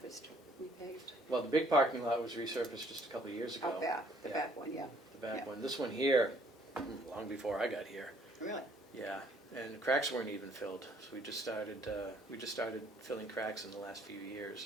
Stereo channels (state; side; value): normal; both; correlation 0.62